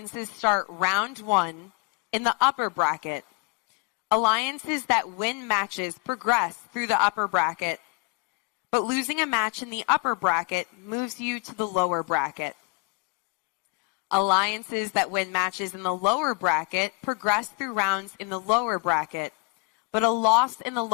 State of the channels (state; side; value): quieter; right; 29.3 dB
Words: start round 1 in the upper bracket. Alliances that win matches progress through the upper bracket, but losing a match in the upper bracket moves you to the lower bracket. Alliances that win matches in the lower bracket progress through rounds in the lower bracket, but a loss in the